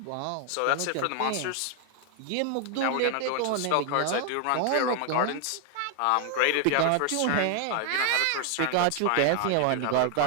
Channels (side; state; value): both; different; correlation 0.00